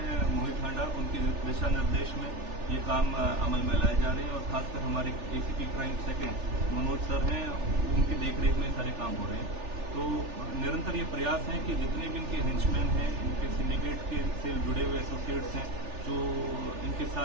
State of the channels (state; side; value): late; left; 3.4 ms